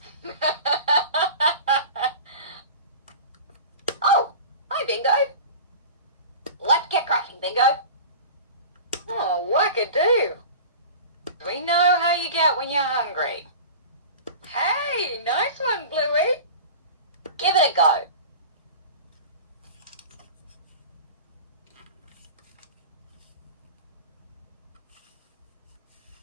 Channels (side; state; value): both; inverted; correlation -0.35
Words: Oh, hi, Bingo. Let's get cracking, Bingo. Oh, wackadoo. We know how you get when you're hungry. Hey, nice one, Bluey. Give it a go.